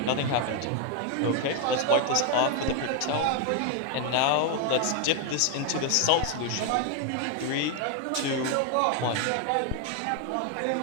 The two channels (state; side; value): different; both; correlation 0.00